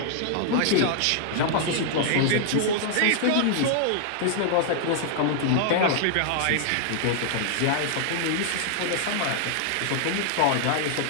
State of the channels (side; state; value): both; different; correlation -0.01